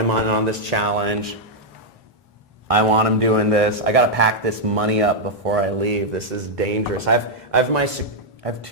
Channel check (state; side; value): normal; both; correlation -0.04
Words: on this challenge. I want him doing this. I got to pack this money up before I leave. This is dangerous. I have